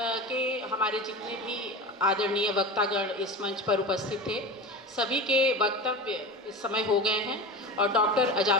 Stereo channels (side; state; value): both; normal; correlation 0.29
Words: के हमारे जितने भी आदरणीय वक्तागण इस मंच पर उपस्थित थे, सभी के वक्तव्य इस समय हो गए हैं और डॉक्टर